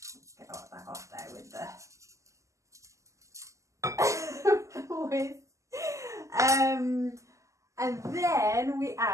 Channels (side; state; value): left; late; 0.15 ms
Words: get all that off there with the and then we